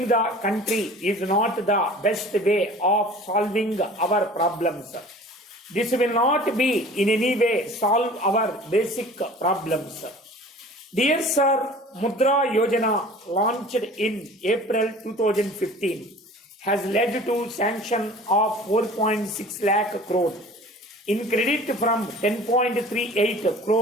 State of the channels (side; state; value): both; normal; correlation 0.44